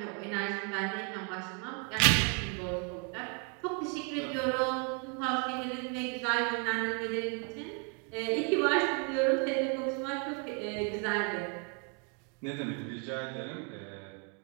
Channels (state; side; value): quieter; left; 36.8 dB